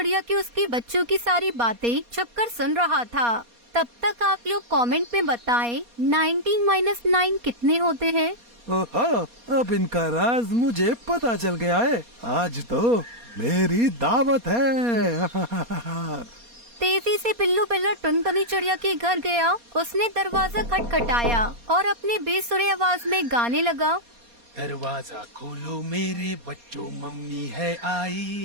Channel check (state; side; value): late; left; 4.2 ms